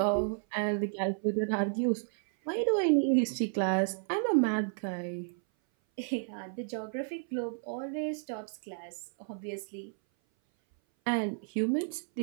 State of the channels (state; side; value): silent; left; 57 dB below the other